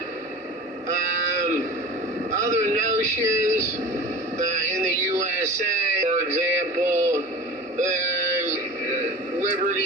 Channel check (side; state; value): both; normal; correlation 0.35